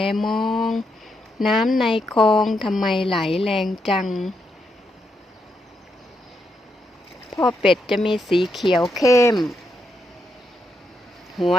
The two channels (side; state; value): both; normal; correlation 0.81